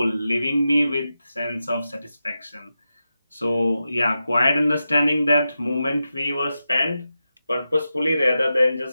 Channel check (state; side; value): inverted; both; correlation -0.90